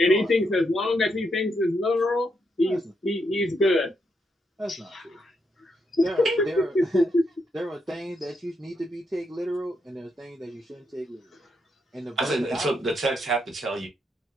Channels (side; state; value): both; normal; correlation 0.80